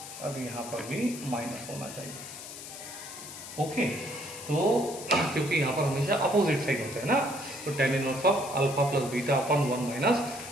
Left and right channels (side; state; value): left; noise; hiss, 12 dB below the sound